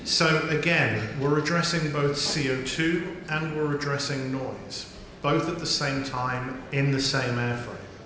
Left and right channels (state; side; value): identical; both; correlation 1.00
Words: So again, we're addressing both CO2 and we're addressing noise, both at the same time in the same airframe.